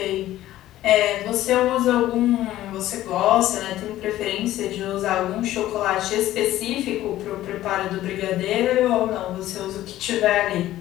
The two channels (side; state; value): right; quieter; 14.3 dB